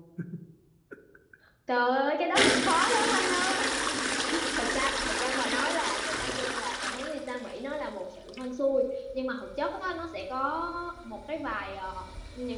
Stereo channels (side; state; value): both; identical; correlation 1.00